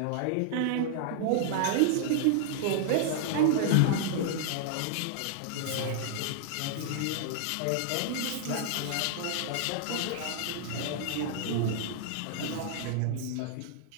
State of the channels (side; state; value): both; different; correlation -0.01